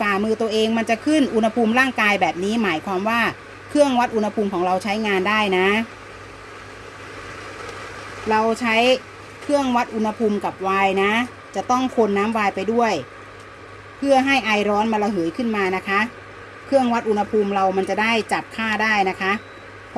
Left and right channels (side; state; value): both; identical; correlation 1.00